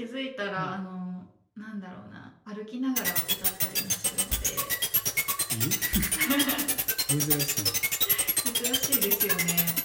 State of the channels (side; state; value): both; identical; correlation 1.00